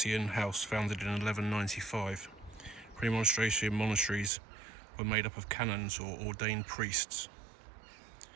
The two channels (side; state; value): left; drops out; at 4.3 s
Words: house founded in 1195. Premonstratensian monasteries were made up of canons or ordained priests